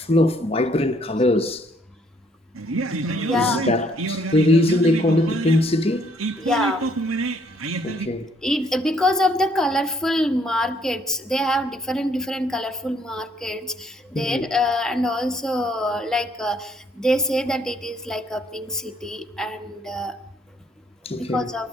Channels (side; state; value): both; normal; correlation 0.66